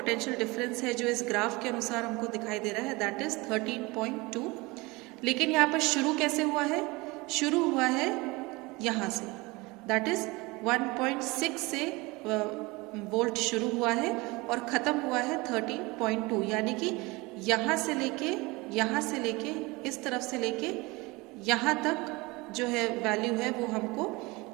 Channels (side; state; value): left; quieter; 23.8 dB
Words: डिफरेंस है, जो इस ग्राफ के अनुसार हमको दिखाई दे रहा है, दैट इज 13.2। लेकिन यहाँ पर शुरू कैसे हुआ है, शुरू हुआ है यहाँ से, दैट इज 1.6 से वोल्ट शुरू हुआ है और ख़त्म हुआ है 13.2। यानी कि यहाँ से लेके इस तरफ से लेके यहाँ तक जो है वैल्यू है वो हमको